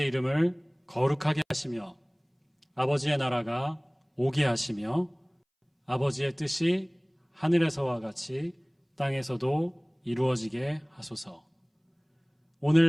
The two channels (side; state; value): both; identical; correlation 1.00